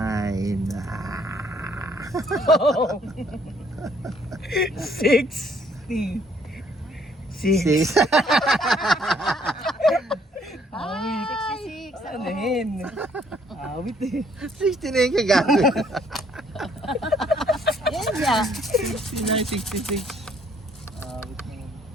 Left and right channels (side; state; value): both; normal; correlation 0.64